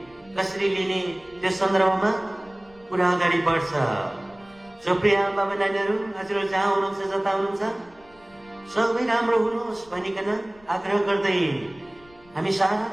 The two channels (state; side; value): noise; left; rumble, 27 dB below the sound